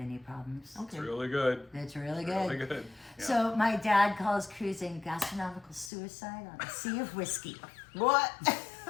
problems. Okay. It's really good. It's really good. Really good. Yeah. So my dad calls cruising gastronomical suicide on a sea of whiskey. What?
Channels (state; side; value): drops out; right; at 5.9 s